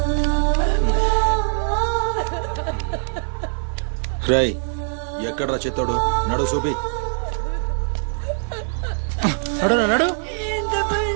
రై ఎక్కడ్రా చిత్తోడు? నడు చూపి. నడు నడు. ఎంత పని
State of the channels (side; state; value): left; silent; 61 dB below the other